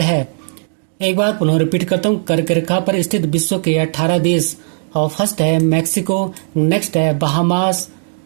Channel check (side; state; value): left; silent; digital silence